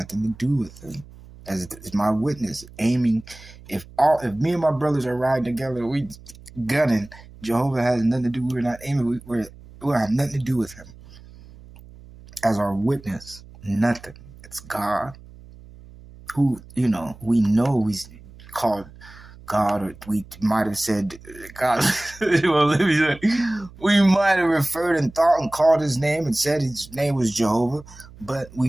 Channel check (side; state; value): right; noise; hum, 20 dB below the sound